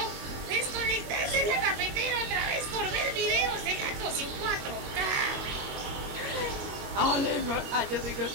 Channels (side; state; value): left; late; 22 ms